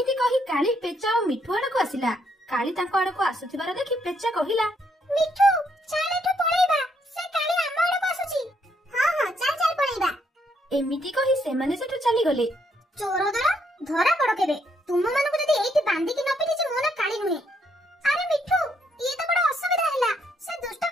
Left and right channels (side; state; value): both; normal; correlation 0.73